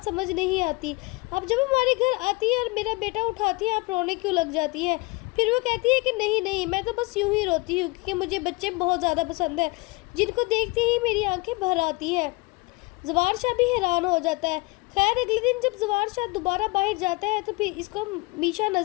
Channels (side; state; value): right; quieter; 25.9 dB